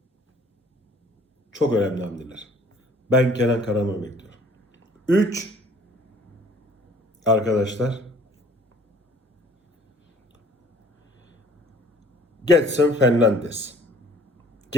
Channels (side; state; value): both; normal; correlation 0.54